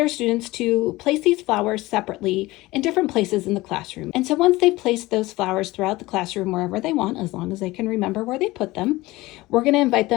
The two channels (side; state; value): right; quieter; 19.7 dB